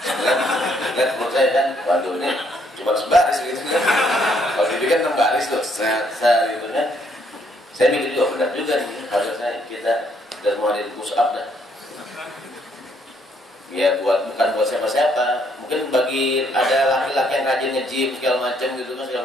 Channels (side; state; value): both; normal; correlation 0.69